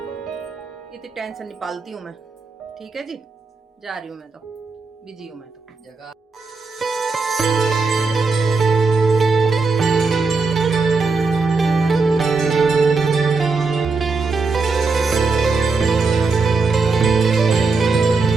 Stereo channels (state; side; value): quieter; left; 4.2 dB